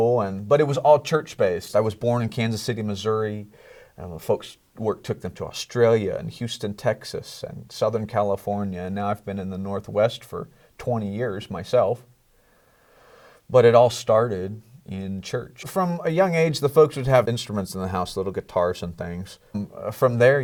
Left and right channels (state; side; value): identical; both; correlation 1.00